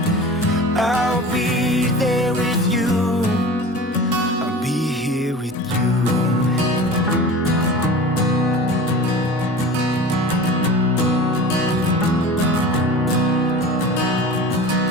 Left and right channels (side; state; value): both; normal; correlation 0.36